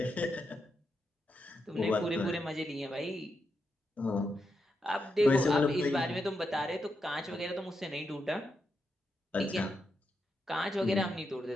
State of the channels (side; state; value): both; normal; correlation 0.84